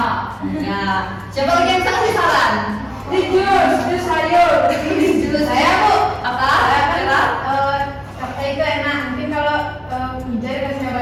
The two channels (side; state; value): both; identical; correlation 1.00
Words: Ya. Siapa lagi yang bisa kasih saran? Di jus sayur. Jus saya Bu. Apa? Capcay itu enak. Mungkin kalau Wija dikasih